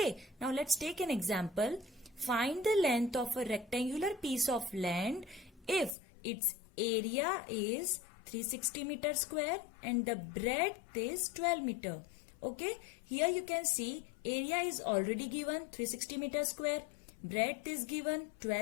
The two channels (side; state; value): right; drops out; at 5.9 s